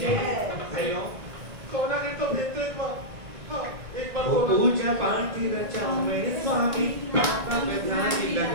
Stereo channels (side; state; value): left; late; 1.8 ms